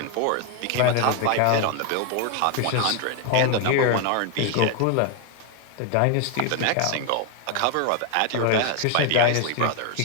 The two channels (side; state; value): both; different; correlation 0.01